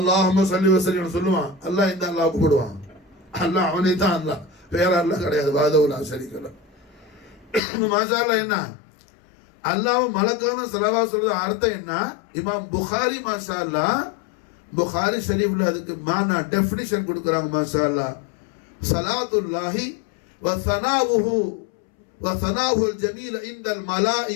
ஸல்லி வ ஸல்லிம் சொல்லுவான். அல்லாஹ் இந்த அல்லாஹ் கூப்பிடுவான். அல்லாஹ் அவனே தான் அல்லாஹ், வேற அல்லாஹ் கிடையாது. வாதவுலா ஷரீக லஹ். மாஷாஅல்லாஹ் என்ன அல்லாஹ் மலக்கான ஸலவாத் சொல்றது அர்த்தம் என்ன? இமாம் புகாரி மாஷாஅல்லாஹ் புகாரி ஷரீஃப்ல அதுக்கு மானா டெஃபினிஷன் கொடுக்கறாங்க மாஷாஅல்லாஹ். ஸலாத்துல்லாஹி வ ஸனாவுஹு வ ஸனாவுல் ஜமீல் இன்தல்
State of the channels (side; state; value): right; drops out; at 7.6 s